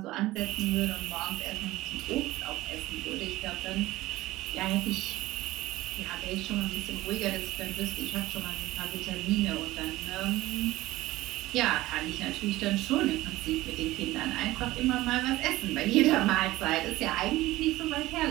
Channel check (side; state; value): left; quieter; 17.5 dB